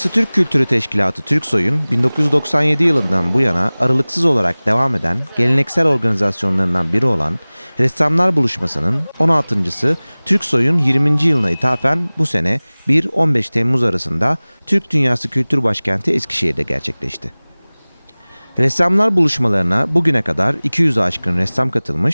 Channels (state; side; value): inverted; both; correlation -1.00